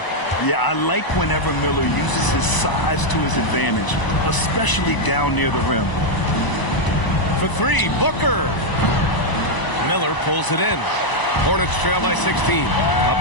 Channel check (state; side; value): late; right; 1.0 ms